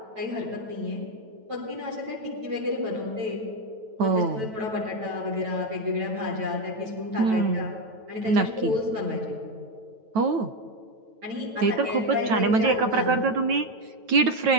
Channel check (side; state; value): left; late; 9.1 ms